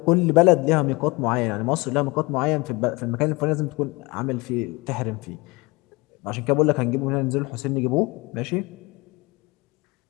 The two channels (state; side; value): quieter; right; 24.5 dB